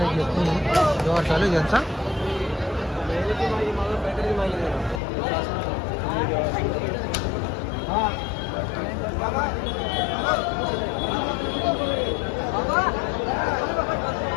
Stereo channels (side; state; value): right; drops out; at 5.0 s